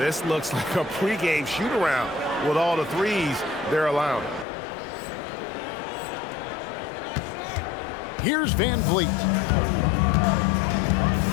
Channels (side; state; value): right; drops out; at 4.5 s